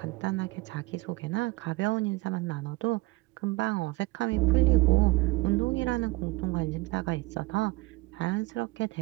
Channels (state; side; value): quieter; left; 22.2 dB